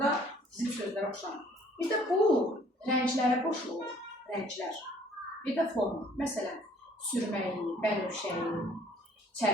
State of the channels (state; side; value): normal; both; correlation 0.58